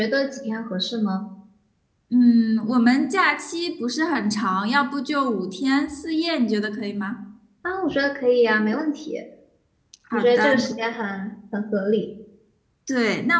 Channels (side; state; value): both; identical; correlation 1.00